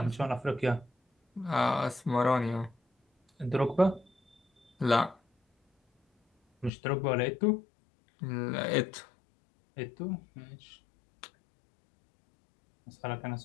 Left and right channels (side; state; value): right; drops out; at 6.7 s